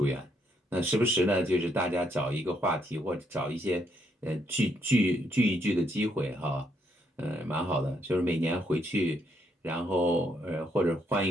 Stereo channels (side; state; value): both; normal; correlation 0.74